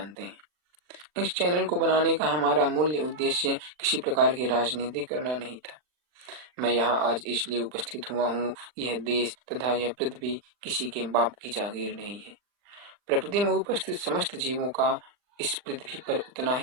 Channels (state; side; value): late; left; 39 ms